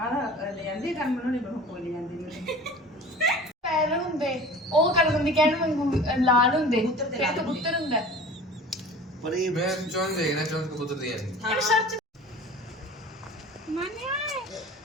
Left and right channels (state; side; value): normal; both; correlation 0.41